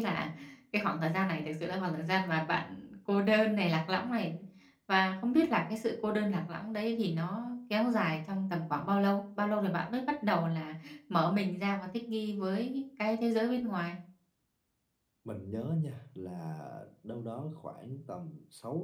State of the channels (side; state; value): both; identical; correlation 1.00